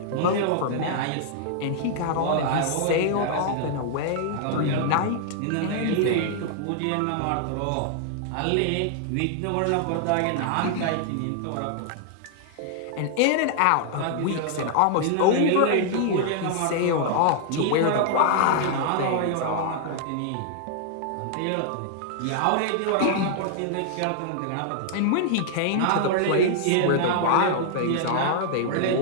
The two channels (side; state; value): both; different; correlation -0.01